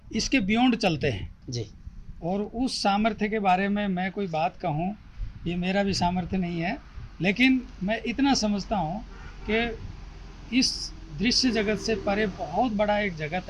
इसके बियॉन्ड चलते हैं जी। और उस सामर्थ्य के बारे में मैं कोई बात कहूँ, ये मेरा भी सामर्थ्य नहीं है, लेकिन मैं इतना समझता हूँ कि इस दृश्य जगत से परे बहुत बड़ा एक जगत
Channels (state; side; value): identical; both; correlation 1.00